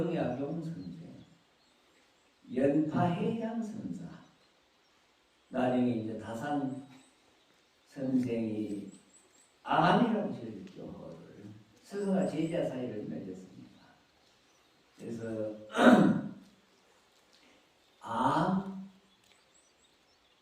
선생, 연파해양 선사, 나중에 이제 다산 선생이 암이라고 지었죠. 스승과 제자 사이를 맺었습니다. 그래서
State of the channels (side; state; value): both; identical; correlation 1.00